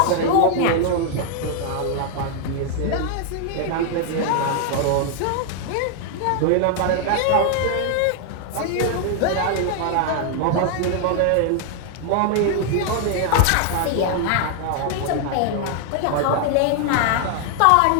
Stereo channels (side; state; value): both; different; correlation 0.00